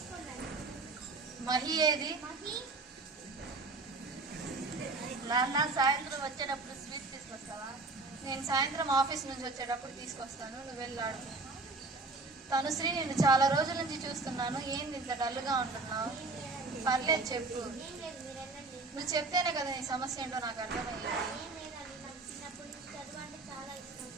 మహి ఏది? నాన్న సాయంత్రం వచ్చేటప్పుడు స్వీట్ తీసుకొస్తావా? నేను సాయంత్రం ఆఫీస్ నుంచి వచ్చేటప్పుడు తీసుకొస్తాను, నువ్వు వెళ్ళి ఆడుకో. తనుశ్రీ నేను చాలా రోజుల నుంచి చూస్తున్నాను, ఏంది ఇంత డల్గా ఉంటున్నావు? పర్లేదు చెప్పు. నువ్వు చెప్తేనే కదా నీ సమస్య ఏంటో నాకు అర్థమయ్యేది.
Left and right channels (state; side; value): quieter; left; 3.5 dB